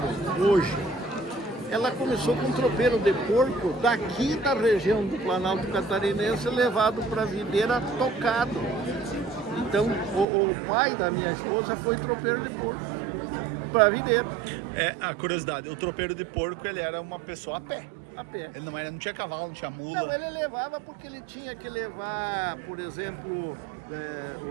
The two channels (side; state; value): left; drops out; at 10.2 s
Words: hoje, ela começou com um tropeiro de porco daqui da região do Planalto Catarinense, levado para a videira tocado. Então, o pai da minha esposa foi tropeiro de porco para a videira. A curiosidade, o tropeiro de porco, ele era uma pessoa a pé. A pé. Ele não tinha cavalo, não tinha mula. Não, ele levava porque ele tinha que levar, por exemplo,